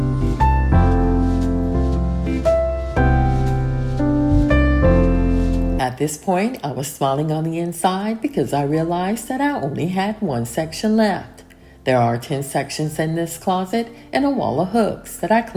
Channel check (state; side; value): identical; both; correlation 1.00